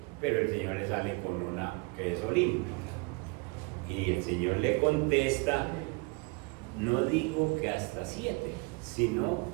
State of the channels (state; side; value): quieter; left; 29.2 dB